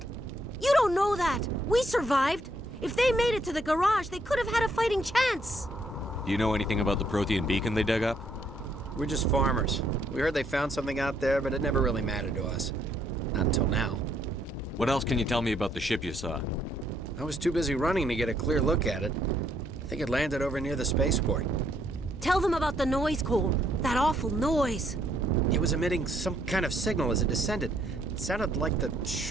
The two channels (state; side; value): normal; both; correlation 0.70